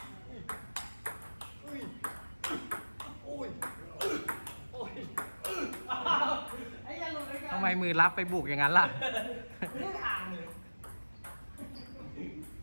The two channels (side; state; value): both; inverted; correlation -1.00